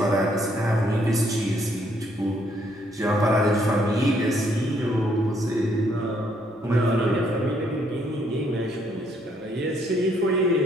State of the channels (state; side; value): normal; both; correlation 0.69